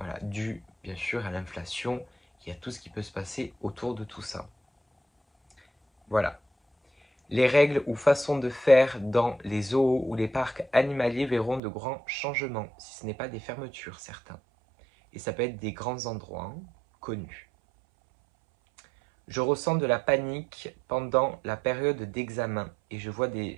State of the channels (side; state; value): left; drops out; at 11.6 s